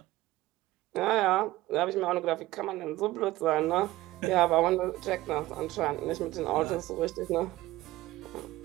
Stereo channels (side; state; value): left; quieter; 17.4 dB